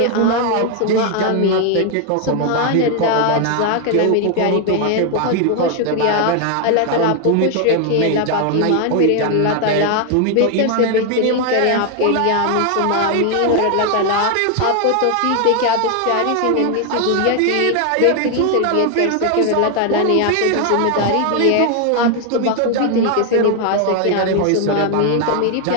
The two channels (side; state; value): both; different; correlation 0.01